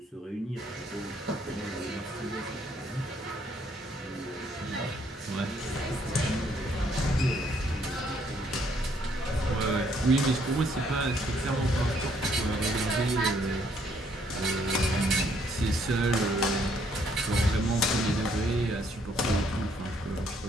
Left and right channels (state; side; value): normal; both; correlation 0.68